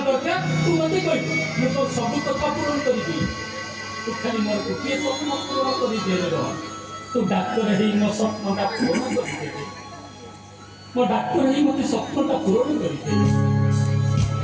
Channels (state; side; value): identical; both; correlation 1.00